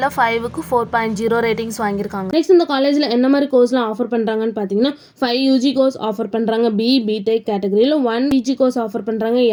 5க்கு 4.0 ரேட்டிங்ஸ் வாங்கியிருக்காங்க. நெக்ஸ்ட் இந்த காலேஜ்ல என்ன மாதிரி கோர்ஸ்லாம் ஆஃபர் பண்றாங்கன்னு பாத்தீங்கன்னா 5 UG கோர்ஸ் ஆஃபர் பண்றாங்க. BTech கேட்டகரியில 1 PG கோர்ஸ் ஆஃபர் பண்றாங்க.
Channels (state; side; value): identical; both; correlation 1.00